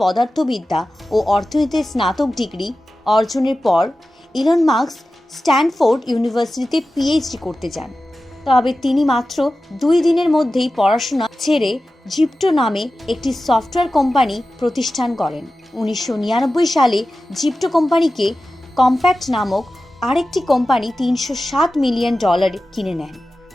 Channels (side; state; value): both; normal; correlation 0.94